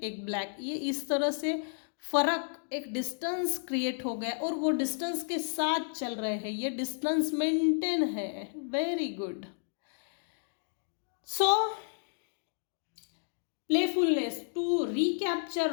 एक ब्लैक, ये इस तरह से फर्क, एक डिस्टेंस क्रिएट हो गया और वो डिस्टेंस के साथ चल रहे हैं, ये डिस्टेंस मेंटेन है। Very good. So playfulness to recapture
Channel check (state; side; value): silent; right; digital silence